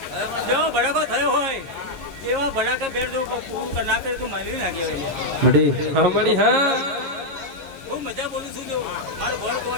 જો ભડાકો થયો હોય એવા ભડાકા ફેર જો પૂરું ના કરે તો મારી ના કહેવાય. મડી બહુ મજા બોલું છું. જો મારો ભર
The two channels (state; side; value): normal; both; correlation -0.02